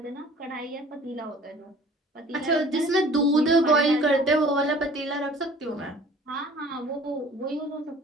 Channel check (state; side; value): normal; both; correlation 0.50